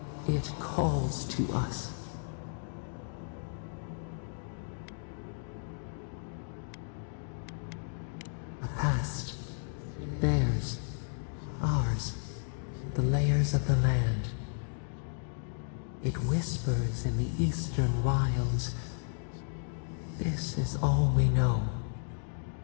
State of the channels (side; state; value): right; silent; digital silence